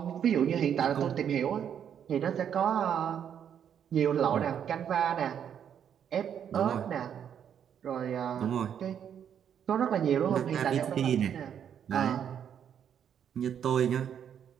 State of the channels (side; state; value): left; quieter; 8.7 dB